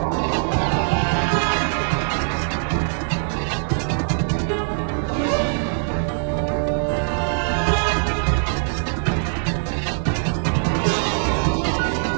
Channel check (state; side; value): silent; left; digital silence